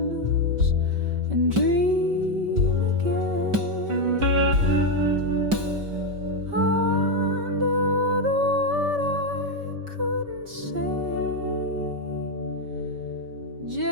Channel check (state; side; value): late; left; 5.2 ms